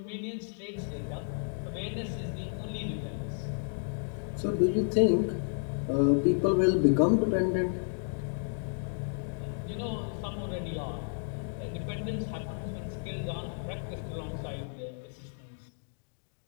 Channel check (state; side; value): silent; right; digital silence